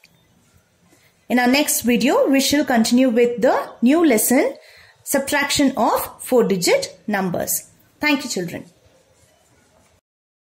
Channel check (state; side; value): identical; both; correlation 1.00